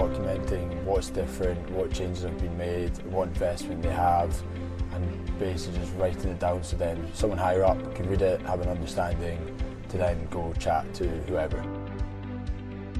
documenting what's different, what changes have been made, what investment they have, and basically just writing it down so then someone higher up can read it, have an understanding, to then go chat to whoever.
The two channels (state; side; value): identical; both; correlation 1.00